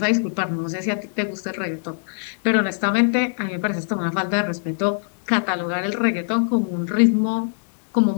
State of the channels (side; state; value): right; silent; digital silence